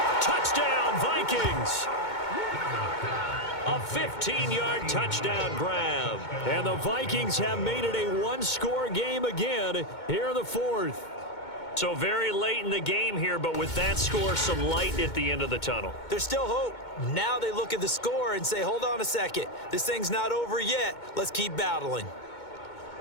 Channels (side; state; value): right; late; 2.2 ms